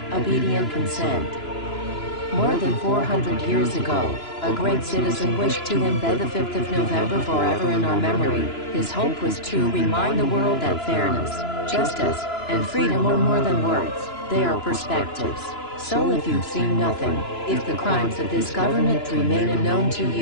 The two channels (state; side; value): late; right; 2.9 ms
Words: obedient consent. More than 400 years ago, a great citizen wished to embed the 5th of November forever in our memory. His hope was to remind the world that fairness, justice, and freedom are more than words, they are perspectives. So if you've seen nothing, if the crimes of this government remain unknown to